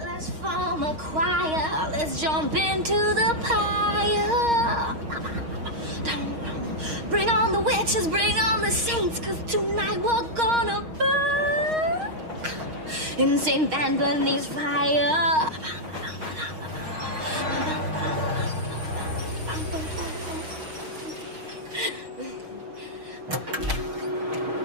Let's form a choir, let's jump into the pyre. Bring on the witches, bring on the saints, 'cause tonight we're gonna burn in St. Anthony's fire.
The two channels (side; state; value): left; late; 6.4 ms